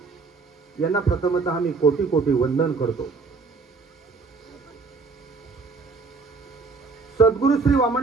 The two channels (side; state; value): left; quieter; 4.5 dB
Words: यांना प्रथमतः मी कोटी कोटी वंदन करतो। सद्गुरू श्री